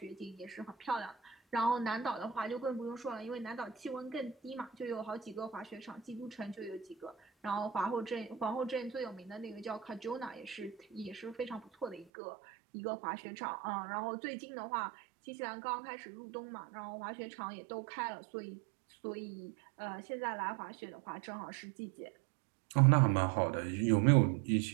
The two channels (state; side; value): drops out; left; at 12.1 s